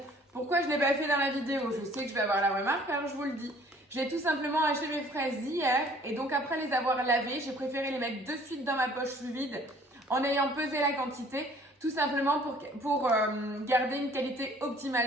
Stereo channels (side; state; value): both; normal; correlation 0.55